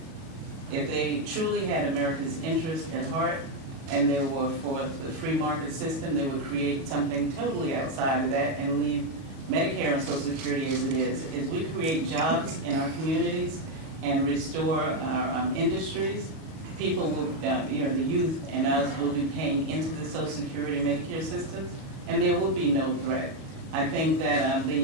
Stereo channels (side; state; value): left; late; 37 ms